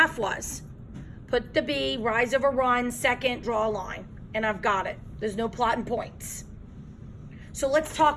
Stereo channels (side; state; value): both; identical; correlation 1.00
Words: was. Put the B, rise over run, second, draw a line. And I've got it. There's no plotting points. So let's